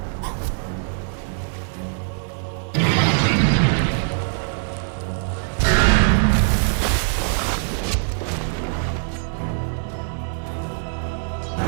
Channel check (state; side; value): silent; left; digital silence